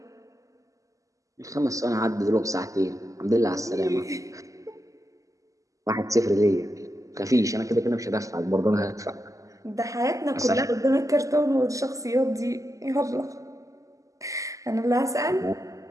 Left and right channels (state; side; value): late; left; 0.16 ms